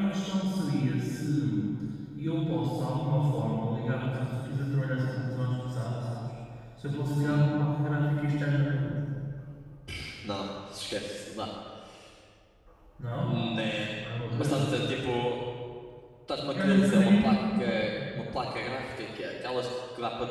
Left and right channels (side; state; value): both; identical; correlation 1.00